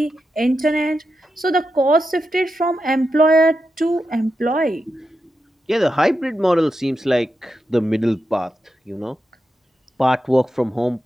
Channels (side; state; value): both; normal; correlation 0.88